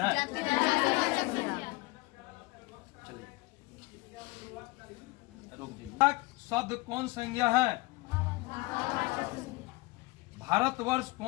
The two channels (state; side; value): quieter; right; 22.7 dB